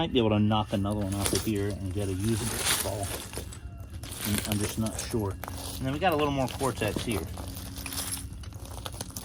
be able to knock another one off of here and get a usable spall. I'm just not sure. And then we got a little more Cortex here.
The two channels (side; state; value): both; identical; correlation 1.00